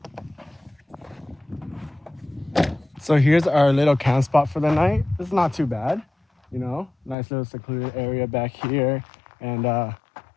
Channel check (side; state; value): right; drops out; at 7.2 s